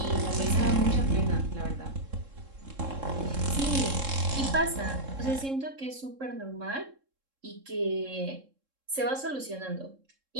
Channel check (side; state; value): left; late; 3.7 ms